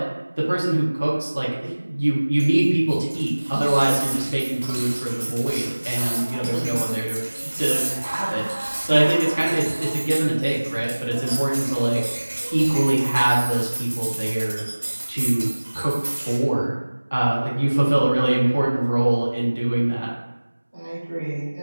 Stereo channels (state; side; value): inverted; both; correlation -1.00